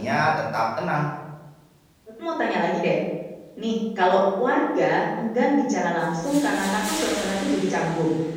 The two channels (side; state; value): both; identical; correlation 1.00